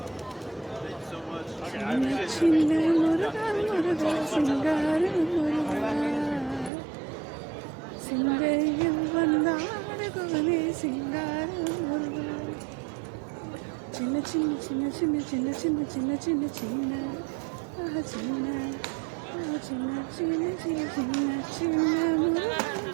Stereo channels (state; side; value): drops out; left; at 6.7 s